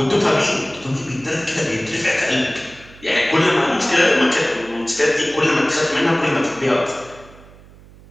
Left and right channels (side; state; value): right; noise; hum, 23 dB below the sound